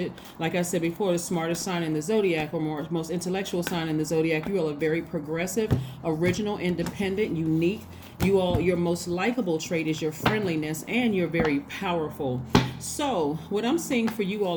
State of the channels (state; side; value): identical; both; correlation 1.00